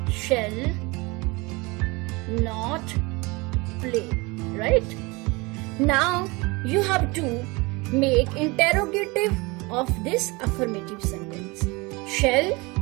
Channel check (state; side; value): quieter; left; 25.4 dB